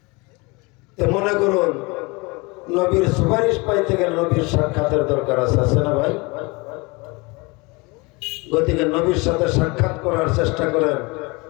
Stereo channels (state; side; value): quieter; right; 26.6 dB